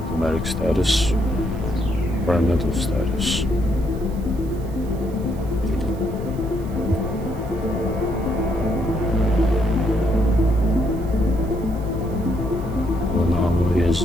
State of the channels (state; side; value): noise; right; hiss, 25 dB below the sound